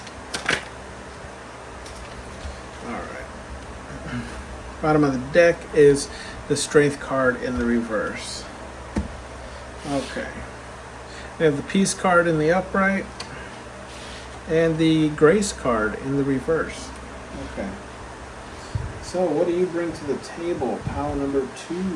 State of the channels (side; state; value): both; identical; correlation 1.00